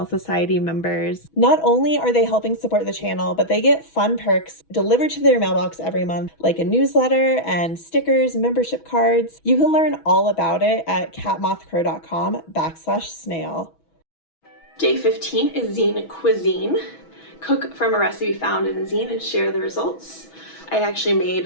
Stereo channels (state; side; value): late; right; 6.2 ms